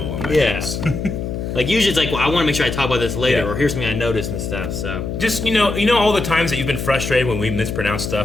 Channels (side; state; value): left; noise; hum, 5 dB below the sound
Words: on my Yeah. notes. Like usually it's like, well, I want to make sure I talk about this later, Yeah. or here's something I noticed and stuff. So Just you know all the times that you've been frustrated when we mispronounce